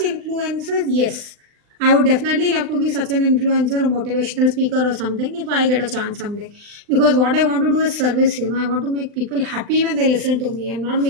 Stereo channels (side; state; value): left; late; 39 ms